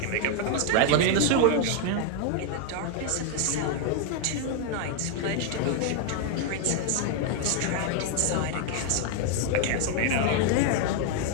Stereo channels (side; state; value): both; different; correlation 0.00